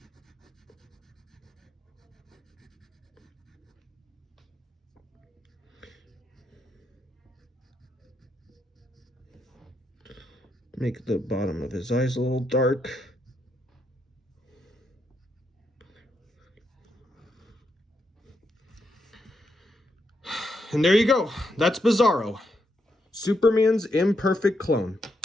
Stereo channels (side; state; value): both; normal; correlation 0.80